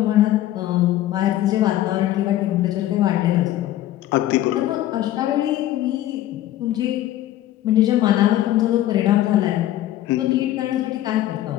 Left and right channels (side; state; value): right; quieter; 13.7 dB